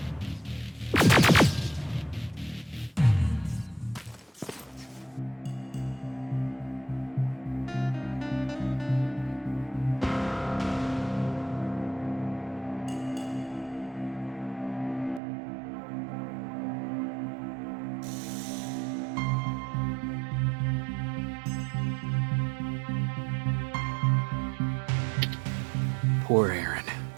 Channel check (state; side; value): drops out; left; at 15.2 s